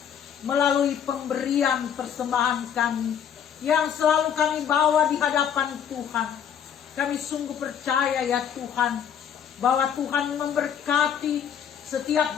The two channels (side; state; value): right; quieter; 8.5 dB